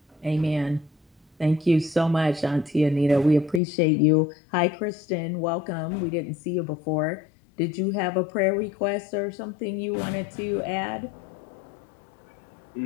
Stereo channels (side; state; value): right; drops out; at 3.6 s